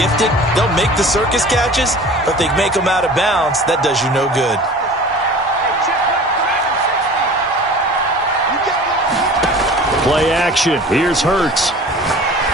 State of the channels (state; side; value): normal; both; correlation 0.41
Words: They'll make the circus catches, but if they make them out of bounds, that does you no good. Play action. Here's Hurts.